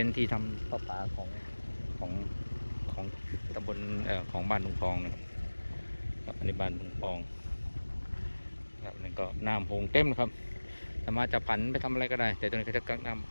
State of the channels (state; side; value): inverted; both; correlation -1.00